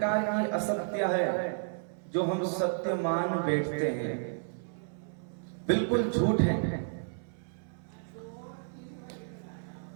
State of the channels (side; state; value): left; silent; 55 dB below the other